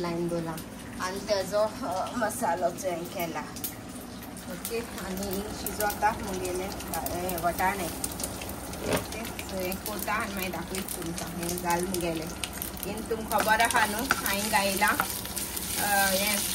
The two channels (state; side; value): identical; both; correlation 1.00